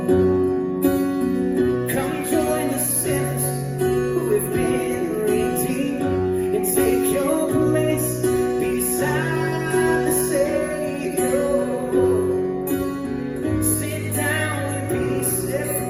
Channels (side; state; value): both; identical; correlation 1.00